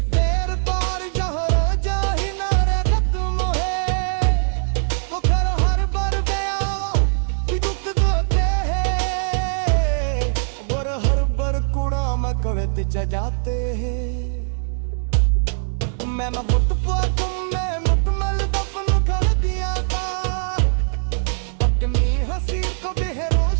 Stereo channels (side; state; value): left; silent; 65 dB below the other